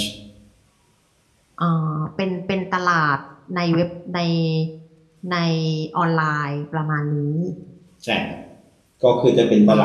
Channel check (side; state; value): both; identical; correlation 1.00